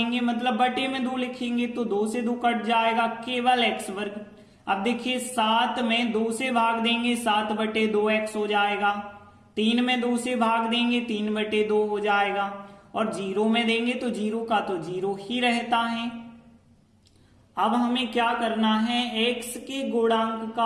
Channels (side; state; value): both; identical; correlation 1.00